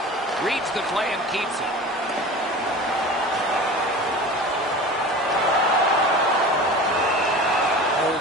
Reads the play and keeps it.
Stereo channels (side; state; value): both; normal; correlation 0.36